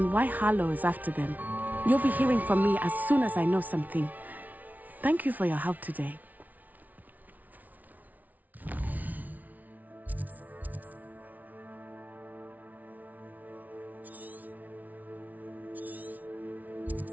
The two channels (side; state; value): left; late; 0.076 ms